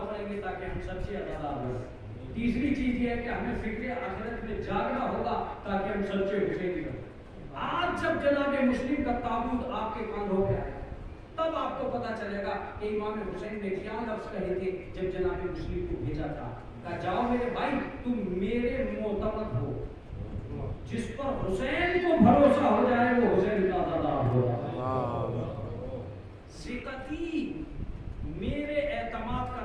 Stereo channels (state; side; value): identical; both; correlation 1.00